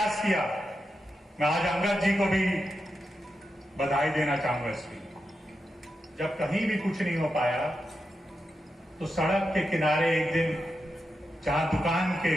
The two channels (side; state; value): both; normal; correlation 0.88